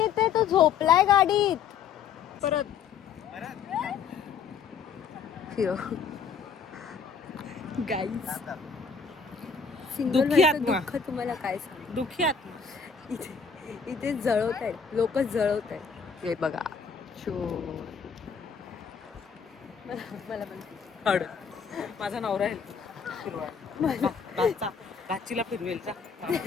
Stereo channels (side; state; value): right; quieter; 6.3 dB